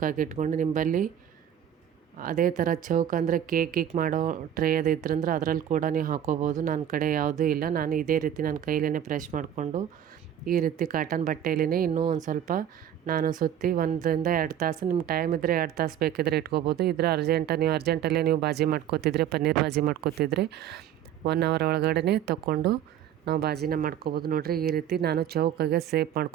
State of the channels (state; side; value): quieter; left; 10.3 dB